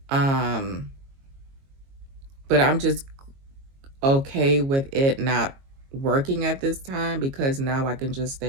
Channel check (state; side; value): late; left; 22 ms